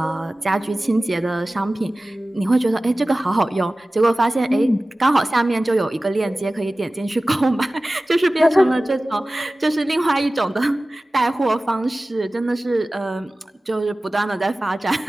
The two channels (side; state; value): both; normal; correlation 0.97